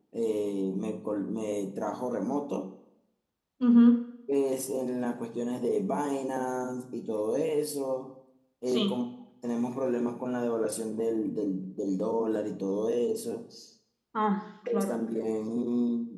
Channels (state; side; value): identical; both; correlation 1.00